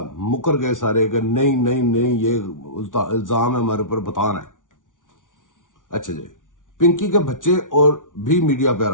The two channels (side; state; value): right; late; 0.88 ms